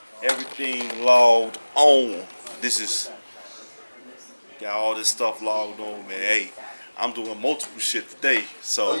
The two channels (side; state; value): both; inverted; correlation -1.00